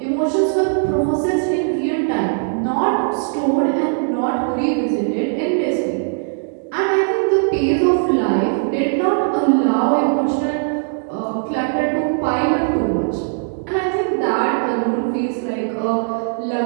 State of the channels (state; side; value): silent; left; digital silence